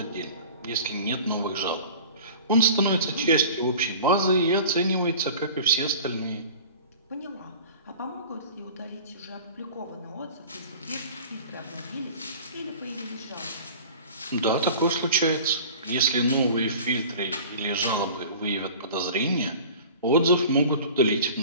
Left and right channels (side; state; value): both; inverted; correlation -0.42